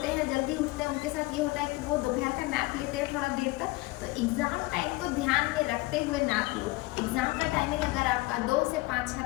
हैं, जल्दी उठते हैं, उनके साथ ये होता है कि वो दोपहर का नैप लेते हैं थोड़ा देर तक। तो एग्ज़ाम टाइम को ध्यान में रखते हुए नैप लो। एग्ज़ाम का टाइमिंग अगर आपका 2 से 5 है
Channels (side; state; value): right; quieter; 21.3 dB